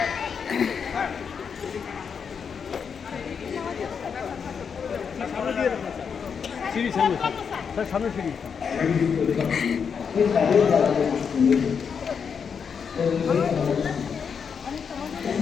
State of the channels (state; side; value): quieter; right; 6.5 dB